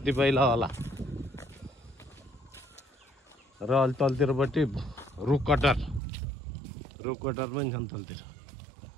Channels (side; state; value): left; drops out; at 6.0 s